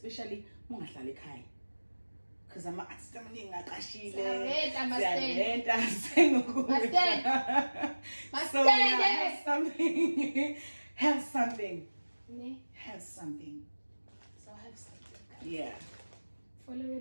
ungahlala ekhaya, because ama artists amaningi aqashile have something. So have something. Yeah. Follow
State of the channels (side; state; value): both; inverted; correlation -1.00